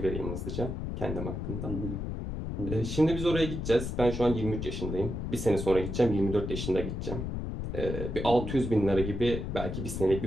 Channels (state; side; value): noise; left; rumble, 4 dB below the sound